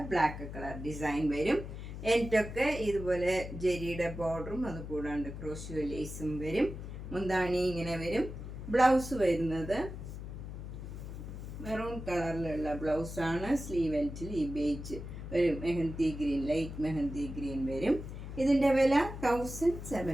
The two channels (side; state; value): left; noise; hum, 9 dB below the sound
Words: ബ്ലാക്ക് കളർ ഡിസൈൻ വരും. എൻഡൊക്കെ ഇതുപോലെ ജെരിയുടെ ബോർഡറും അതുകൂടാണ്ട് ക്രോഷ്യോ ലേസും വരും. മുന്താണി ഇങ്ങനെ വരും. ബ്ലൗസ് വരുന്നത് മെറൂൺ കളറിലുള്ള ബ്ലൗസാണ്. സ്ലീവ് എൻഡിൽ ഈ ബേജ് ഒരു mehndi green, light mehndi green വരും. ഇതിൻ്റെ വില